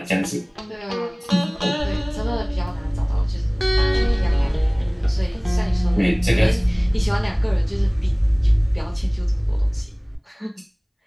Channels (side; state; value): both; identical; correlation 1.00